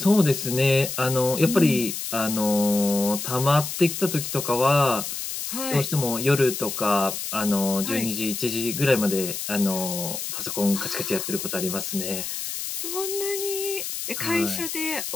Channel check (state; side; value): noise; left; hiss, 5 dB below the sound